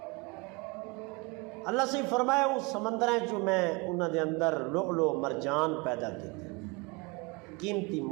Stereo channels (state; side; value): quieter; left; 27.6 dB